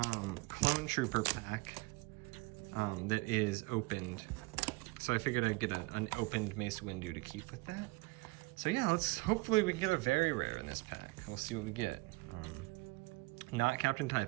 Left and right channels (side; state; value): left; quieter; 24.3 dB